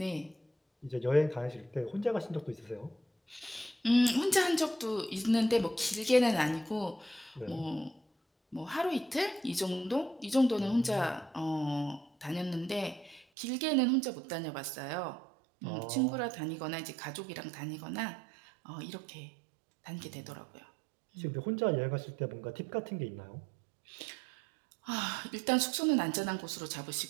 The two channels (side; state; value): left; drops out; at 13.2 s